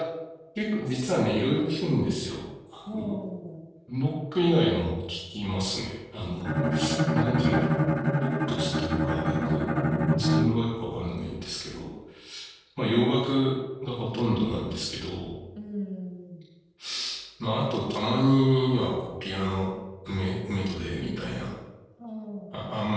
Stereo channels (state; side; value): identical; both; correlation 1.00